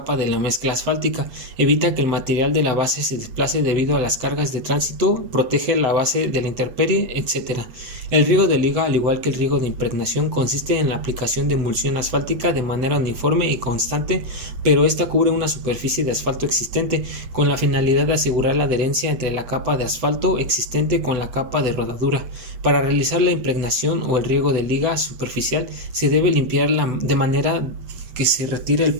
de la mezcla asfáltica, evita que el material de la base se desplace debido a las cargas de tránsito, protege la base de la intemperie, etc. El riego de liga, al igual que el riego de impregnación, consiste en la aplicación de emulsión asfáltica de manera uniforme y constante, pero esta cubre una superficie de asfalto existente, con la finalidad de asegurar la adherencia entre la capa de asfalto existente con la capa de rodadura. Para realizar la impregnación o el riego de liga superficial, se debe limpiarla de manera que se retire el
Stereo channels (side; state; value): left; late; 8.2 ms